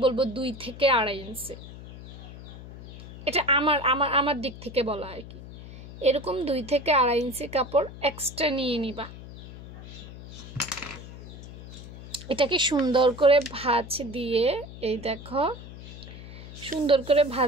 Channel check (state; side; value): noise; left; hum, 14 dB below the sound